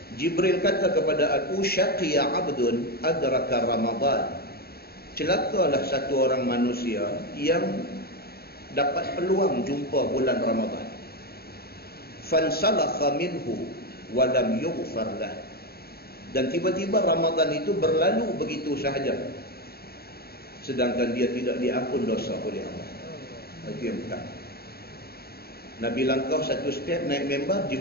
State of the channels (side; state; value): right; late; 0.45 ms